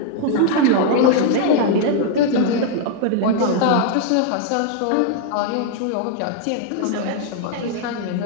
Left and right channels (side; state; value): both; different; correlation 0.00